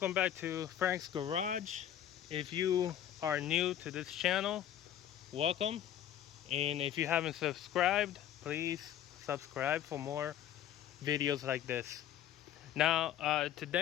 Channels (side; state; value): right; quieter; 11.1 dB